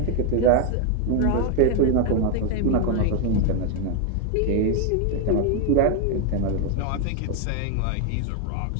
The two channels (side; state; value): both; different; correlation 0.01